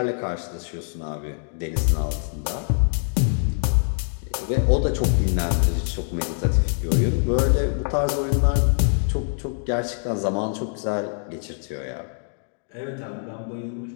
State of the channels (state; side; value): silent; right; digital silence